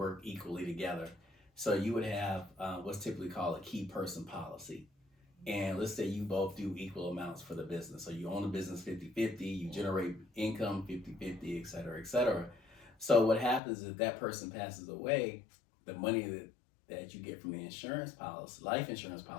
equally together. So you would have what's typically called a key person policy. And let's say you both do equal amounts for the business. So you own the business 50-50, you generate income 50-50, et cetera, et cetera. So what happens is if that person passes away, the money that you get from the insurance policy, life insurance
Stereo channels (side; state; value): right; drops out; at 13.6 s